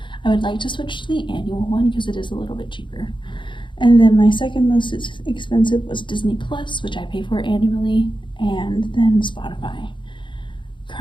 I would like to switch to the annual one because it is a little bit cheaper. And then my second most expensive was Disney Plus, which I pay for annually, and then Spotify.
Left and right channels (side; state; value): right; late; 0.23 ms